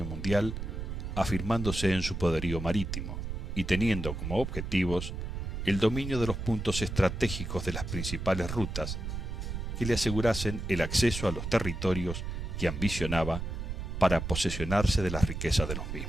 mundial, afirmándose en su poderío marítimo y teniendo como objetivos el dominio de los puntos estratégicos de las principales rutas que le asegurasen el acceso a los territorios que ambicionaba para posesionarse de las riquezas de los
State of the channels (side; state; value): right; noise; rumble, 5 dB below the sound